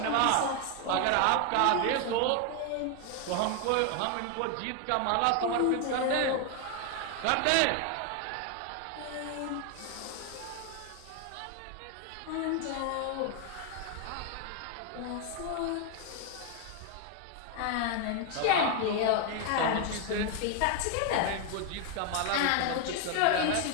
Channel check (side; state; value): both; different; correlation 0.01